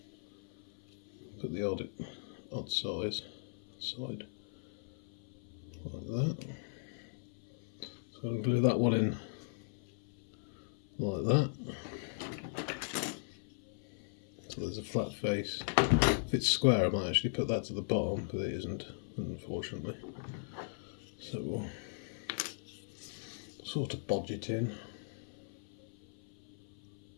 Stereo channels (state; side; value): silent; right; 52 dB below the other